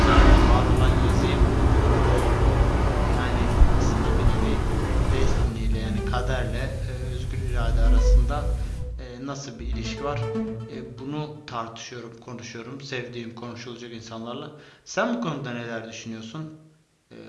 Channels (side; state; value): both; identical; correlation 1.00